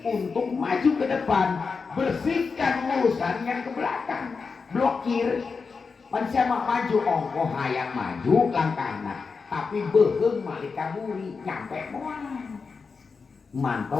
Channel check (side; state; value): right; quieter; 4.9 dB